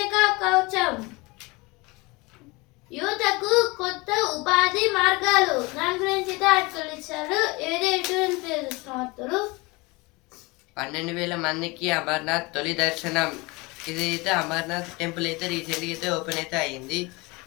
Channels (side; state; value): right; quieter; 24.9 dB